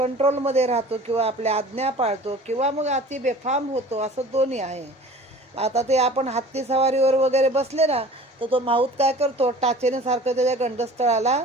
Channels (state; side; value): normal; both; correlation 0.43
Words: राहतो किंवा आपल्या आज्ञा पाळतो किंवा मग अति बेफाम होतो, असं दोन्ही आहे. आता ते आपण हत्ती सवारीवर वगैरे बसले ना, तर तो माऊत काय करतो, टाचेने सारखं त्याच्या गंडस्थळाला